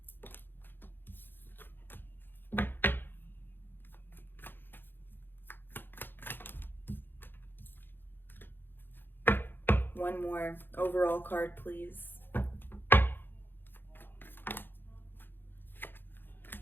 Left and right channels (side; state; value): right; late; 0.098 ms